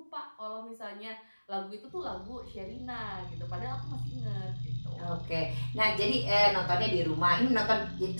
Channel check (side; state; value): both; inverted; correlation -1.00